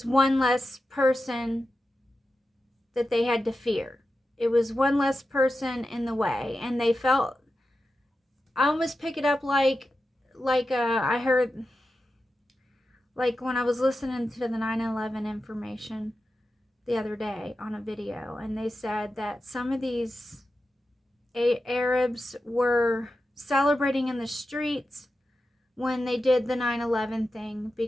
one less person that they had to fear. It was one less person in the way. And they felt, I almost pick it up like I heard, like when I was listening to the 9/11 information the other day on a video, and they said that some of these Arabs were celebrating in the streets when they did the 9/11 thing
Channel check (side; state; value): both; normal; correlation 0.91